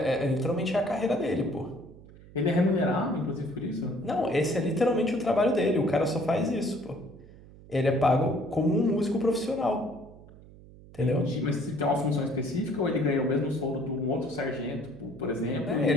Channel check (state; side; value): noise; right; hum, 20 dB below the sound